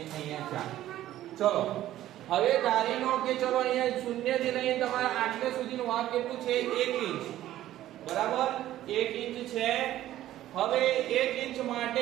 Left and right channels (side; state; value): left; quieter; 13.6 dB